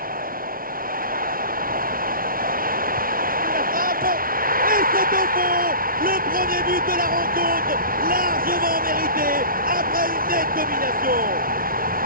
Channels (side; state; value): left; late; 0.42 ms